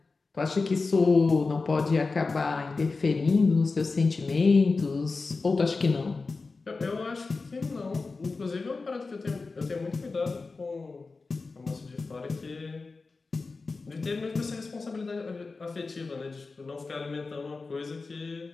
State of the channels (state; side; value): quieter; right; 4.0 dB